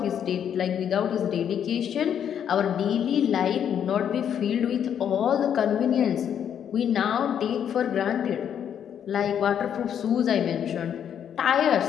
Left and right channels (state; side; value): quieter; right; 8.9 dB